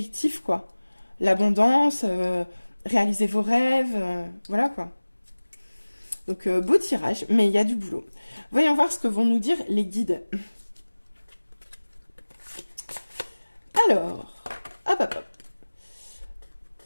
quoi. L'abondance, réaliser vos rêves, voilà, quoi. Donc, beau tirage, mais il y a du boulot. Voyons voir ce que vont nous dire les guides. Alors, hop.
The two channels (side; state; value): both; inverted; correlation -1.00